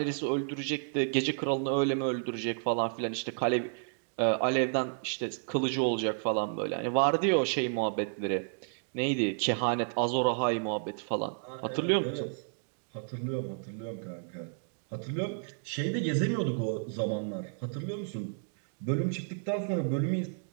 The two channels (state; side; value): silent; left; digital silence